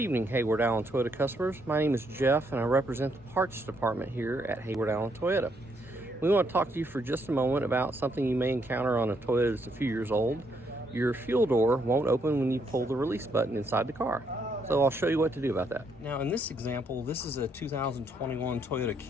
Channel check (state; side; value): normal; both; correlation 0.74